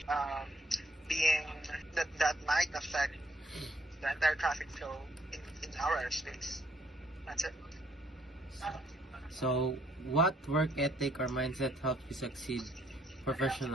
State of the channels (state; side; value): normal; both; correlation 0.68